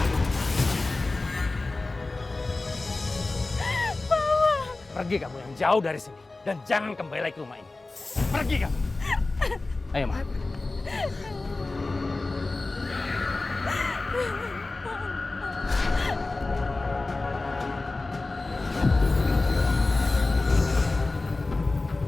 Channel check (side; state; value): right; quieter; 3.3 dB